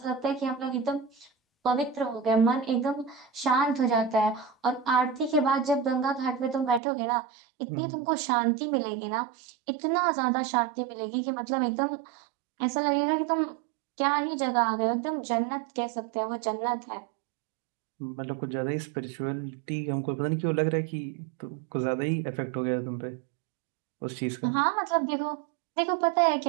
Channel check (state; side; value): drops out; left; at 6.8 s